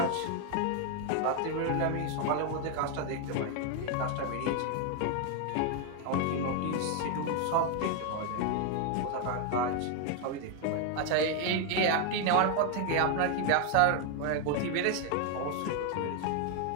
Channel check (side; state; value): both; different; correlation 0.01